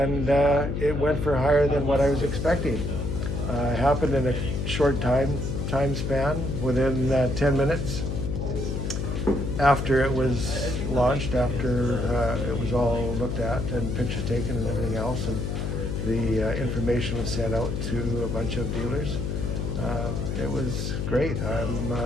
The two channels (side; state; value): left; noise; hum, 2 dB below the sound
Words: it went for higher than what I was expecting. Happened in a short time span, within 10 minutes after it was launched, after it was all looked at and pictures taken and everything else, and the information was sent out to a bunch of dealers. It was great. I'm